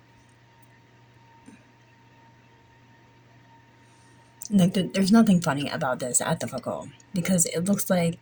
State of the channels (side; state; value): both; identical; correlation 1.00